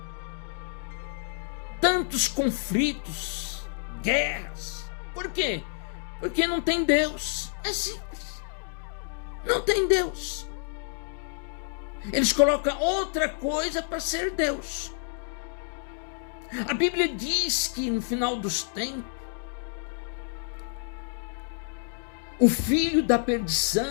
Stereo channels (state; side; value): silent; right; digital silence